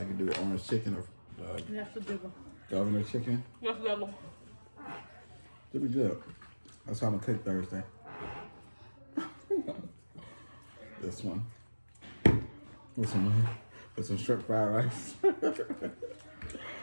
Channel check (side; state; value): both; inverted; correlation -1.00